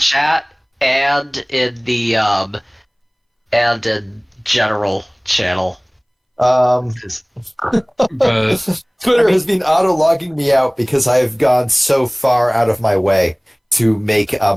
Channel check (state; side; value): identical; both; correlation 1.00